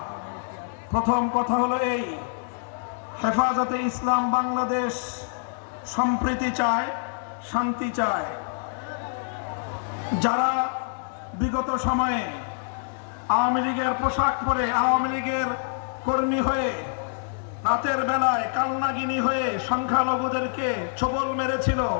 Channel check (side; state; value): right; silent; digital silence